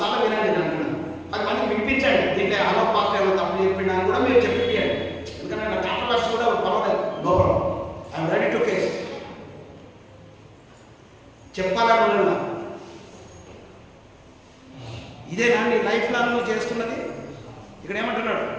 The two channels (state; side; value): identical; both; correlation 1.00